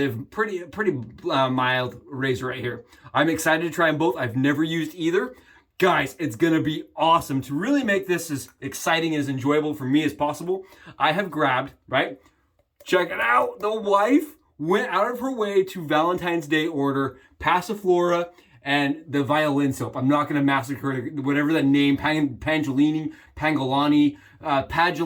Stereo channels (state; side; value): identical; both; correlation 1.00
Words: pretty mild razor right here. I'm excited to try them both. I've never used either. Guys, it's gonna be awesome. To really make this as exciting and as enjoyable for me as possible, I have grabbed, right? Check it out. The wife went out of her way to Valentine's Day order Passiflora and the violin soap. I'm not gonna massacre whatever the name, Pangolani,